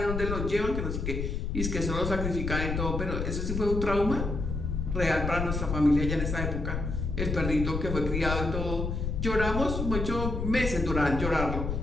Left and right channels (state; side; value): noise; left; rumble, 2 dB below the sound